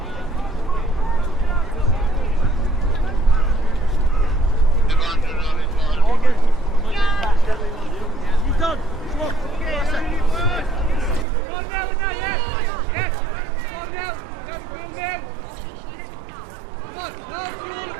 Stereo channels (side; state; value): left; drops out; at 11.2 s